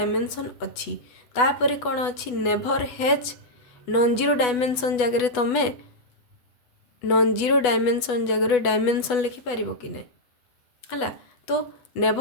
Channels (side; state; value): right; late; 8.1 ms